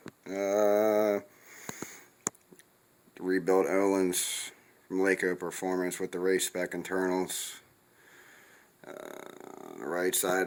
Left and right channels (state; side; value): identical; both; correlation 1.00